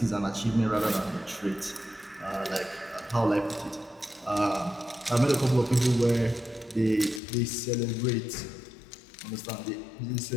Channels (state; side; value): drops out; right; at 7.2 s